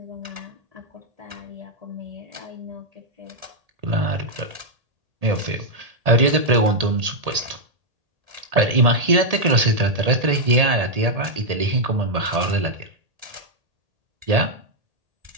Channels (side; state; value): left; late; 1.8 ms